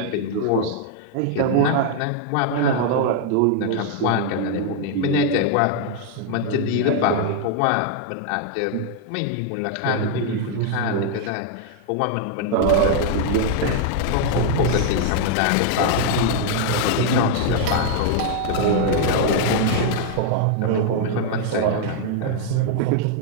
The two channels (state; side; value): different; both; correlation 0.00